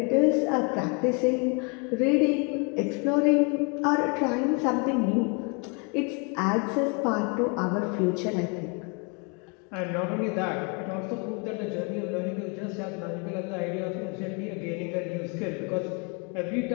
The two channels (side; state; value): right; quieter; 34.4 dB